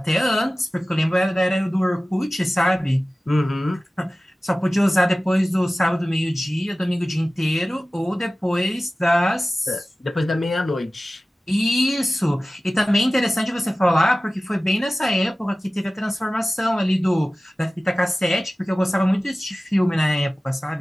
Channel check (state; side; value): normal; both; correlation 0.96